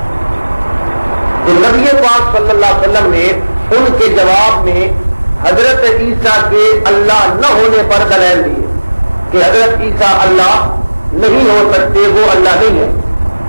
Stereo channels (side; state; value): both; inverted; correlation -1.00